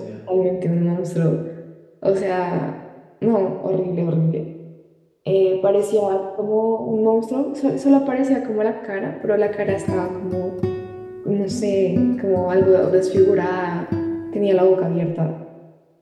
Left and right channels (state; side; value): identical; both; correlation 1.00